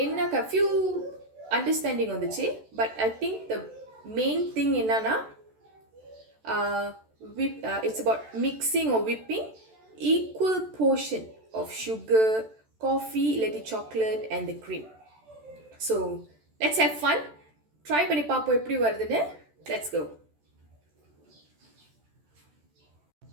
என்ன few understanding வந்துச்சு. But I think the main thing என்னன்னா it's about mixing or whipping equal portion of sugar, coffee, இல்லாட்டி chocolate and the cream. So let's have fun. Try பண்ணி பார்ப்போம் எப்படி வருதுன்னு. Let's go.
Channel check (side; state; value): left; late; 14 ms